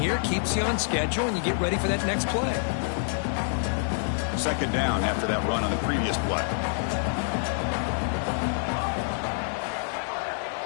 Keeps you on schedule, and you get ready for that next play. Second down after that run on the previous play.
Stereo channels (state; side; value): silent; right; 60 dB below the other